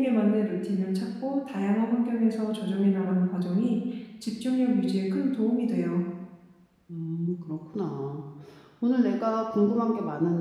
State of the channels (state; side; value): identical; both; correlation 1.00